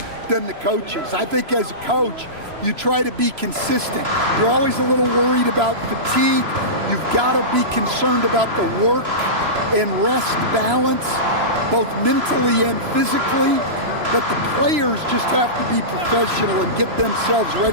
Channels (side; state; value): left; late; 3.0 ms